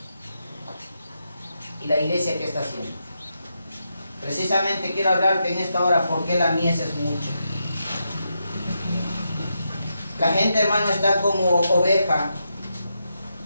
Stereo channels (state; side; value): inverted; both; correlation -0.84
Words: ¿Y la iglesia qué está haciendo? Precisamente quiero hablarte en esta hora por qué la mies es mucha. La gente, hermano, está como oveja